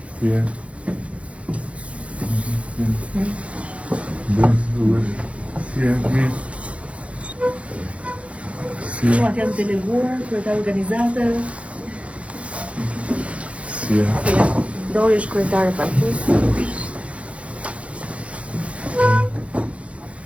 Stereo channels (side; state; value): left; late; 0.063 ms